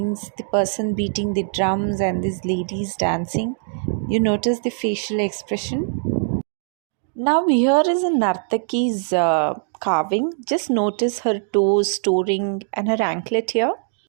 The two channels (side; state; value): left; silent; 61 dB below the other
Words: the person beating the drums and these ladies dancing. You notice the facial expression. Now, here is a Nartaki's carving. Just notice her toes, toe ring, and her anklet here.